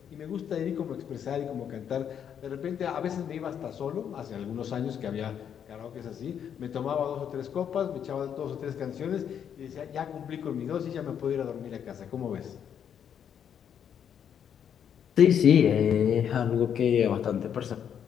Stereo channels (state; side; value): quieter; right; 8.6 dB